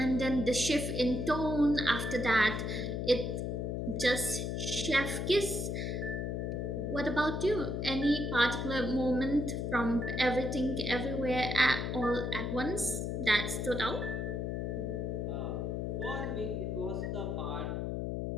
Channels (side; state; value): left; noise; hum, 2 dB below the sound